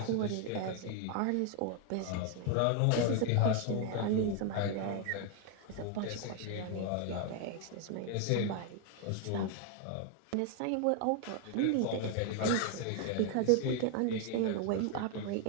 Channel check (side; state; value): both; different; correlation 0.01